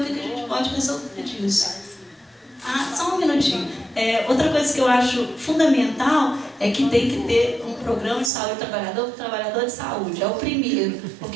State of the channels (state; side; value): drops out; left; at 8.3 s